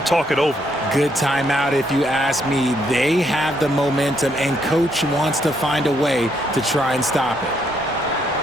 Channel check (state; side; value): normal; both; correlation 0.73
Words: talk it over. Good timeout if you ask me. They have the momentum, and coach wants to find a way to try and stop it.